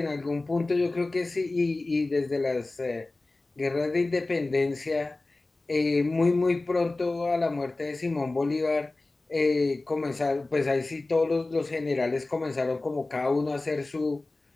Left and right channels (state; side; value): quieter; right; 3.1 dB